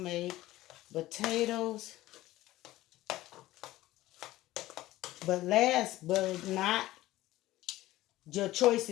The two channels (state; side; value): quieter; right; 16.4 dB